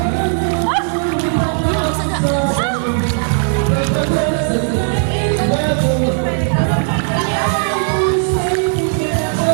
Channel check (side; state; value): left; silent; digital silence